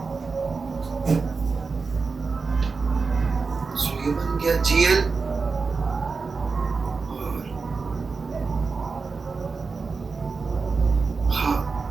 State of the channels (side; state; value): left; quieter; 4.5 dB